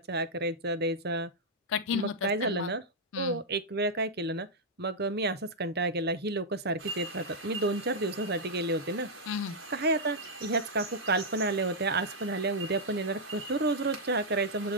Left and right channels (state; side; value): normal; both; correlation -0.06